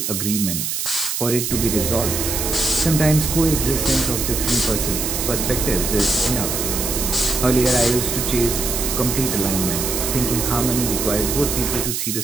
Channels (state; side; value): noise; right; hiss, 2 dB below the sound